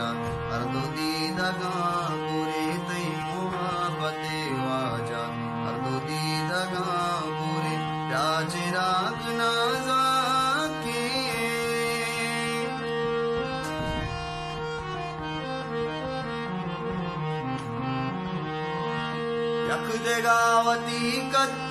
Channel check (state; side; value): identical; both; correlation 1.00